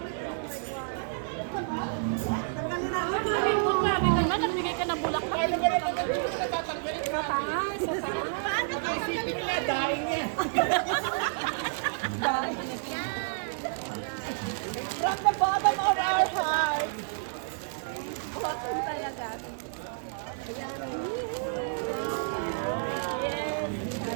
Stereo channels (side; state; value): left; silent; digital silence